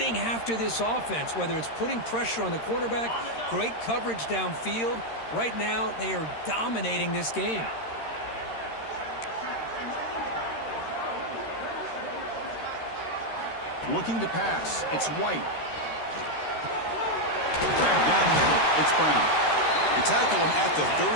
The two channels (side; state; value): right; late; 13 ms